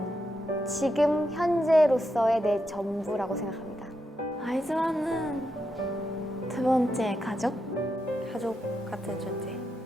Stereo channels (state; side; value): normal; both; correlation 0.84